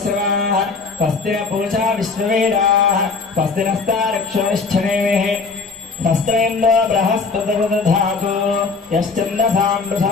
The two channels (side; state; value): right; quieter; 4.5 dB